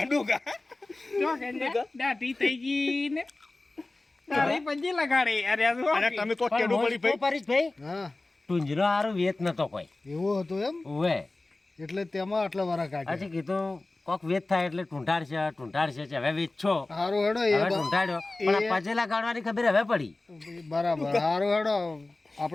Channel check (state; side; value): quieter; right; 3.0 dB